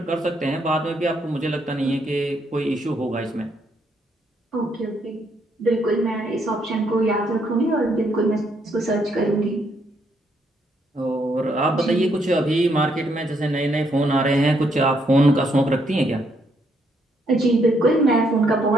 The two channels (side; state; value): both; normal; correlation 0.73